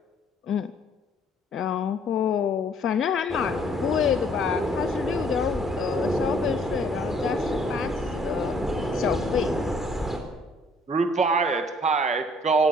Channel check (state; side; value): normal; both; correlation 0.60